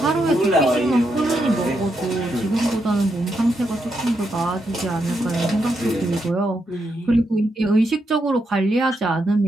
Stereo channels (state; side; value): normal; both; correlation 0.81